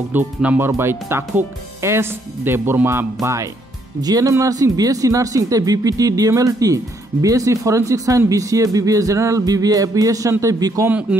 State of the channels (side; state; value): both; normal; correlation 0.71